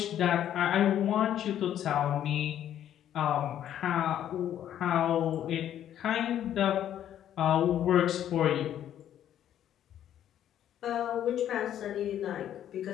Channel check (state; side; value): quieter; right; 10.8 dB